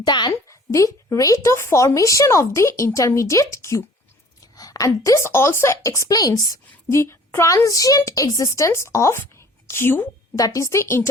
the rate of formation of the intermediate Q. And this also explains the transient existence of Q, that is the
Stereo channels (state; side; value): normal; both; correlation 0.50